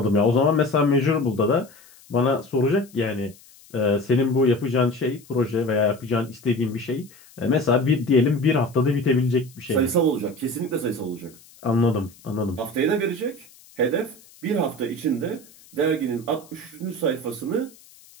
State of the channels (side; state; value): left; noise; hiss, 25 dB below the sound